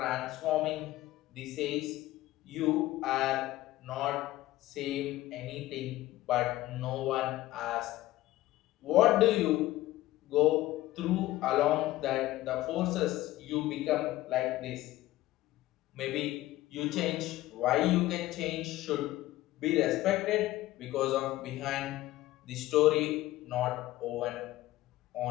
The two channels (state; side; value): quieter; right; 16.5 dB